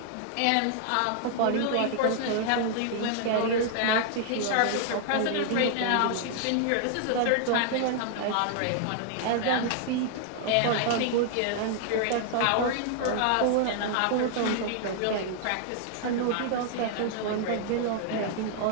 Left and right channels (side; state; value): both; different; correlation -0.01